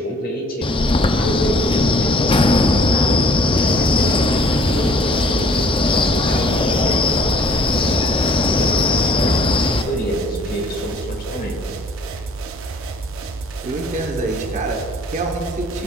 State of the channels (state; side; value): normal; both; correlation 0.56